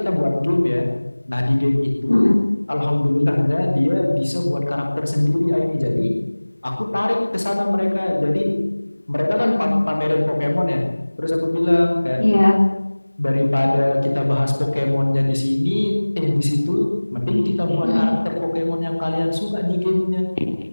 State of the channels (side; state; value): both; inverted; correlation -1.00